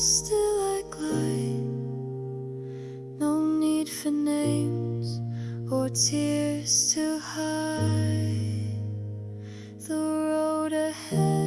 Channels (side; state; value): both; identical; correlation 1.00